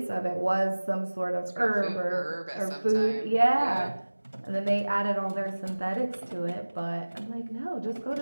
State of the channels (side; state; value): both; inverted; correlation -1.00